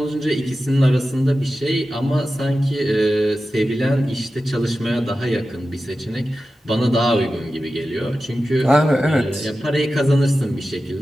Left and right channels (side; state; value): both; normal; correlation 0.93